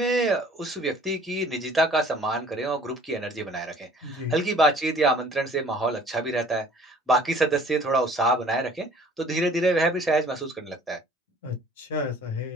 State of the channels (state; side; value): normal; both; correlation 0.52